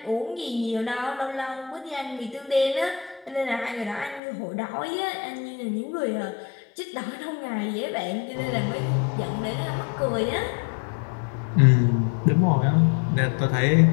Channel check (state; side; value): drops out; right; at 4.2 s